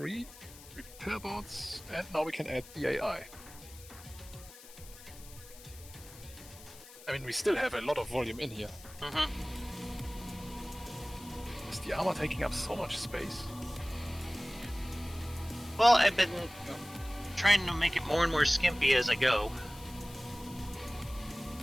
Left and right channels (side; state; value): left; noise; hiss, 18 dB below the sound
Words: repair bots, and now we can add the AI. I mean, we still have a lot of volume in here. Mm-hmm. Is the armor taking up so much space? Well, I've been trying to make it more and more skimpy as I go.